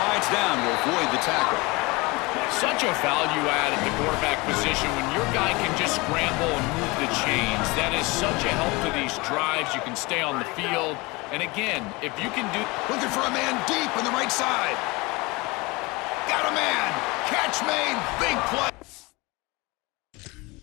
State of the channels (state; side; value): quieter; right; 24.6 dB